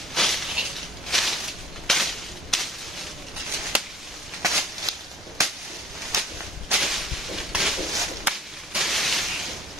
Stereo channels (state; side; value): normal; both; correlation 0.53